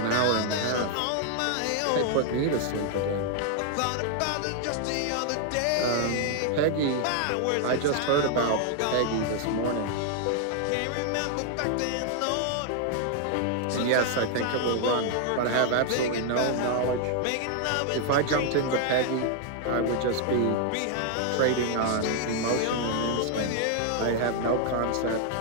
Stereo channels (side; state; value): both; different; correlation 0.00